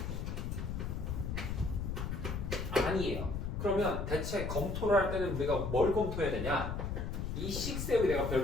아니에요. 그러면 대체 검토를 할 때는 우리가 뭘 검토해야 되냐? 이 식 세우기 내가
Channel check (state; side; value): noise; left; rumble, 3 dB below the sound